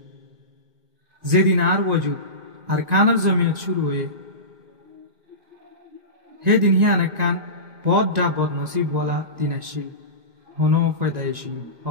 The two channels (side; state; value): left; late; 1.9 ms